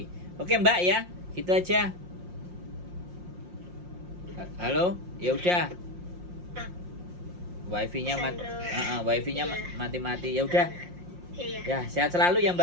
Oke Mbak ya, gitu aja. Halo, ya udah. Wifi-nya wifi-nya Iya. mati-mati. Ya udah. Iya. Ya, sehat selalu ya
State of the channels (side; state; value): left; late; 5.6 ms